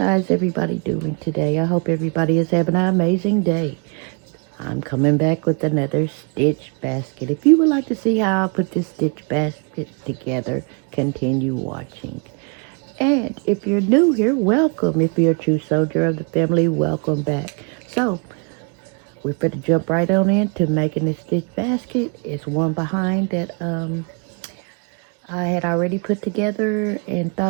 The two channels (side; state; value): left; quieter; 35.9 dB